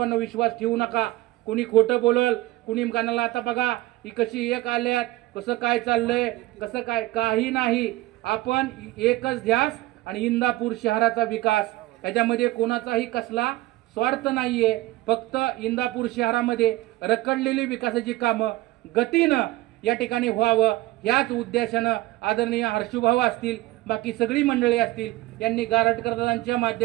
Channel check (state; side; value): quieter; left; 18.2 dB